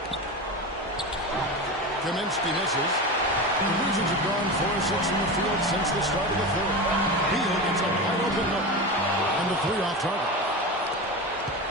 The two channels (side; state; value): both; normal; correlation 0.24